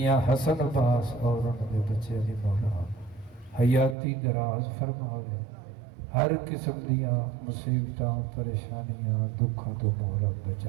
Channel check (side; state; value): left; drops out; at 4.0 s